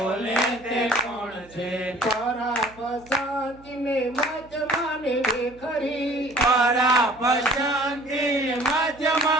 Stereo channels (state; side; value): noise; right; hum, 24 dB below the sound